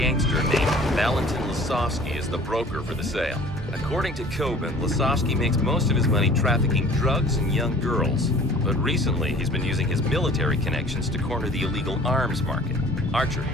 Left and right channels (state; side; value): normal; both; correlation 0.48